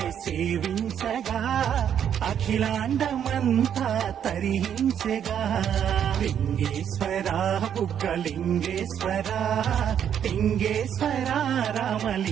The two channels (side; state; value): left; quieter; 9.0 dB